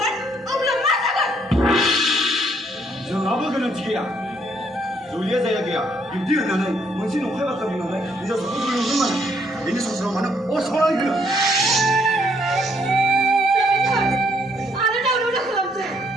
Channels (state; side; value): normal; both; correlation 0.69